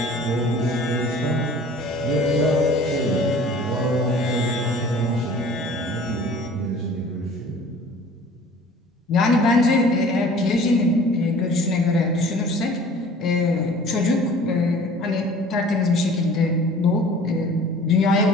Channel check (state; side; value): normal; both; correlation 0.47